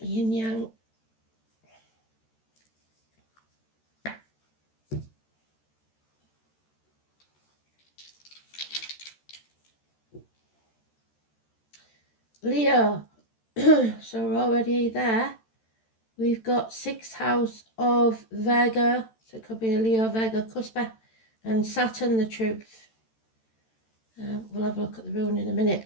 yin yang. Leo. So we're already there. We've got 6th house of Virgo. So it could be a Leo, Virgo, Cuspa. And Saturn, the truth. We'll have a look at the rune in a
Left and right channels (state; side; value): late; right; 13 ms